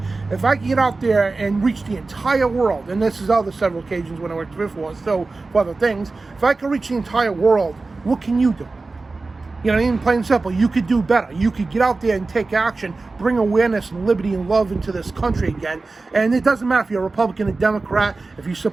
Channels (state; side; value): quieter; left; 3.7 dB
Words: If I can get out there and reach the entire world, and this is other several occasions when I worked for still for other things, if I can reach the entire world, what can you do? You know, even plain and simple, you could do better. You could get out there and take action, bring awareness and liberty and love into this country again. And it doesn't matter if you're a Republican or Democrat. If you